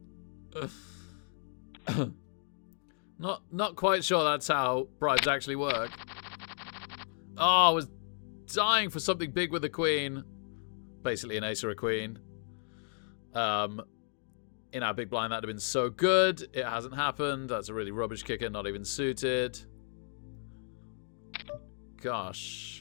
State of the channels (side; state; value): right; silent; digital silence